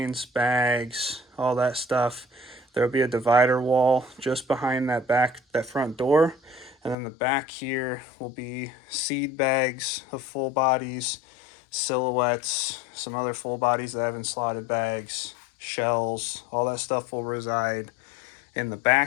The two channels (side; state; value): right; drops out; at 7.0 s